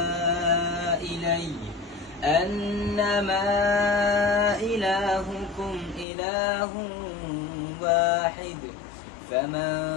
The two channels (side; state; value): right; drops out; at 6.1 s